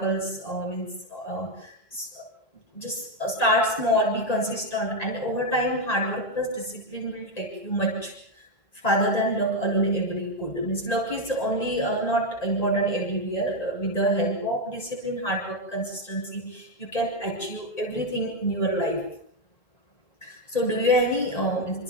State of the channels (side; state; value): right; late; 1.9 ms